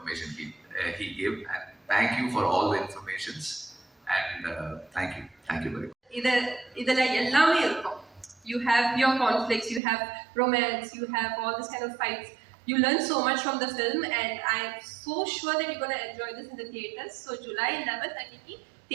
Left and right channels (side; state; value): left; drops out; at 9.8 s